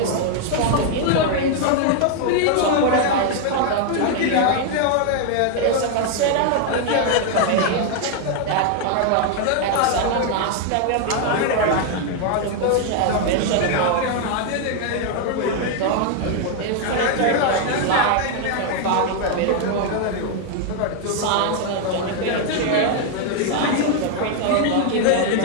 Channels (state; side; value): different; both; correlation 0.00